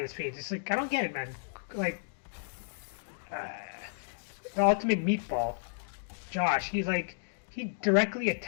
his fate. It's like I don't get it, man. Like the ultimate meatball, Josh. He directly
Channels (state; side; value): silent; right; digital silence